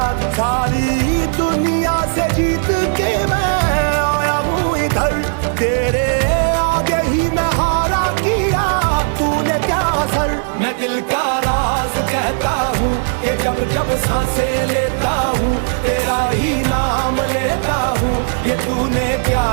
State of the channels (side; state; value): left; silent; digital silence